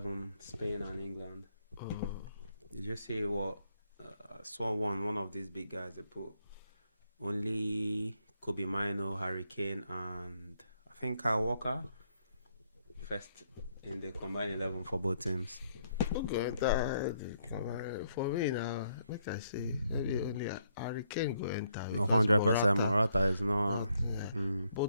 Spain and England. Did you see what? I saw one of these big guys. They put only Kobe Mino, Harry Kane, and I think Kyle Walker first in the combined 11 for both teams. Okay, for me now, like I say, maybe only Harry Kane go enter. No, because 100%. Morata is not. yeah,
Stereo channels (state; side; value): inverted; both; correlation -0.73